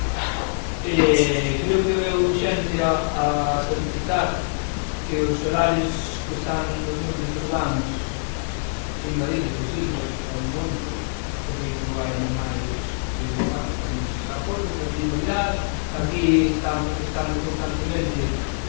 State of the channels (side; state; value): right; silent; 59 dB below the other